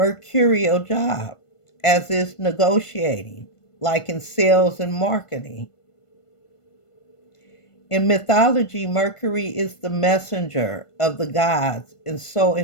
job, as is negotiating, like in sales and marketing. In mythology, Mercury is the messenger of the gods, and so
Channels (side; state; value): right; late; 1.5 ms